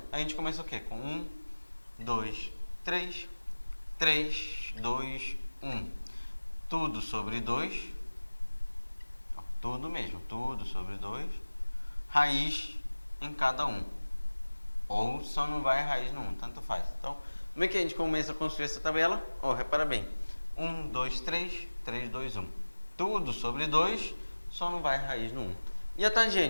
a gente começa o quê? Com 1, 2, 3. 3, 2, 1. Tudo sobre 2. Tudo mesmo. Tudo sobre 2. Raiz em cada um. Ou só não vai raiz no 1. Tanto faz. Então, como é que a gente começa a construir essa tabela? Repara bem. 1, 2, 3. 3, 2, 1. Tudo sobre 2. Só não vai raiz no 1. E a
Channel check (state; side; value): inverted; both; correlation -1.00